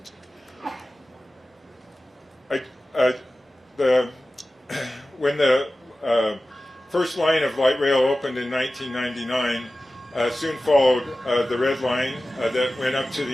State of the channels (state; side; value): normal; both; correlation 0.95